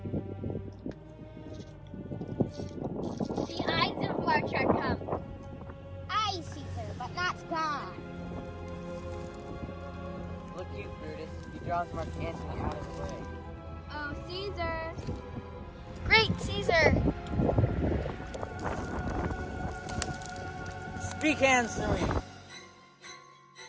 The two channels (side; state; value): both; identical; correlation 1.00